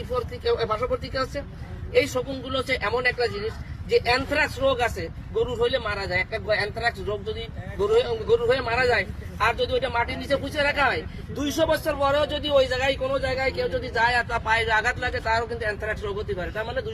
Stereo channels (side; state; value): both; identical; correlation 1.00